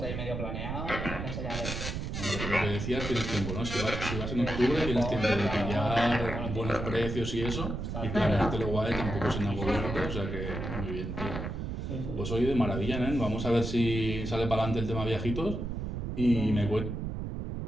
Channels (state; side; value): noise; right; rumble, 4 dB below the sound